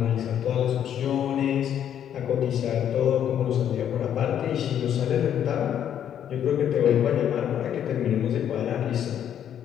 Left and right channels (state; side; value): quieter; right; 9.7 dB